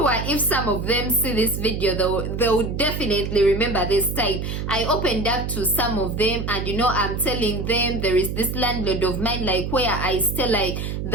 if some of them see this video, they'll definitely remember this time. I opened up to some of them, and you know, I'm telling them there is this landlord of mine, like where I stay, like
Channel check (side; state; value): right; noise; hum, 4 dB below the sound